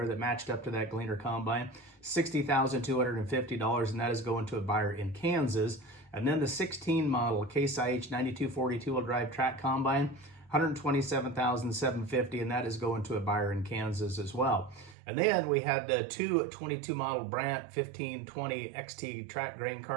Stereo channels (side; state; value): left; drops out; at 15.0 s